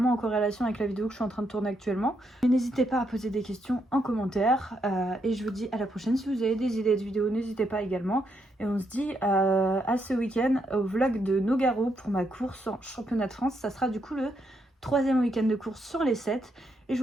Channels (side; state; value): both; normal; correlation 0.78